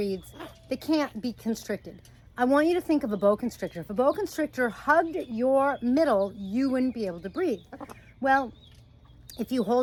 they can't be constricted. I want you to think of a boa constrictor. If a boa constrictor hugged your middle, you wouldn't be able to breathe. Well, if you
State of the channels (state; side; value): identical; both; correlation 1.00